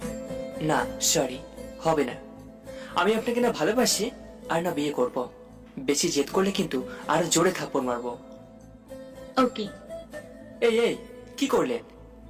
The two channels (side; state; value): both; identical; correlation 1.00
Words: না সরি, হবে না। আমি আপনাকে না ভালোবাসি আর না বিয়ে করব। বেশি জেদ করলে কিন্তু আরো জোরে থাপ্পড় মারবো। ওকে। এই এই, কি করলেন?